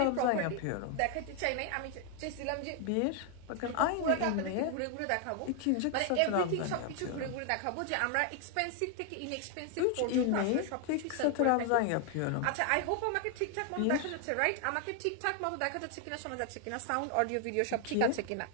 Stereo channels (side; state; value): both; different; correlation 0.00